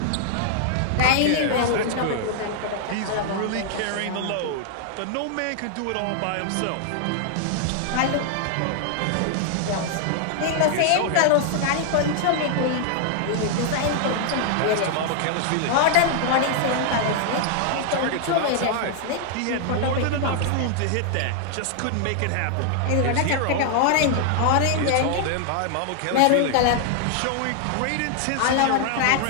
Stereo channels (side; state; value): both; different; correlation 0.00